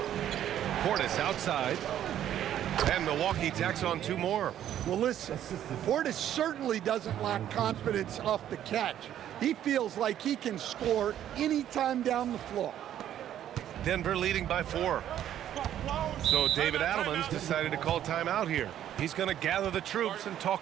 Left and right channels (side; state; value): left; quieter; 11.1 dB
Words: Portis outside. And Milwaukee tacks on 2 more. Well, listen, Portis certainly doesn't lack confidence off the catch. He feels like he can score anytime down the floor. Denver leading by 4. So David Adelman's decided to call timeout here. He's going to gather the troops and